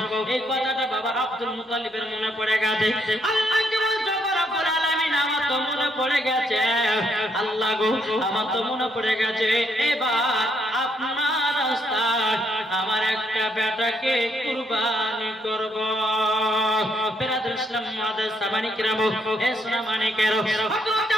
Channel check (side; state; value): both; normal; correlation 0.73